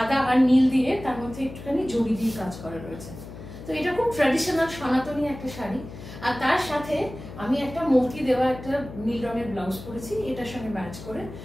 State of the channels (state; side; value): noise; left; hum, 13 dB below the sound